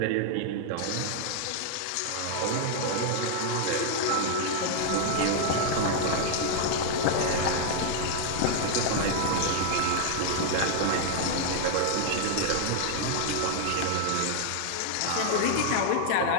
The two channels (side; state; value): both; different; correlation 0.00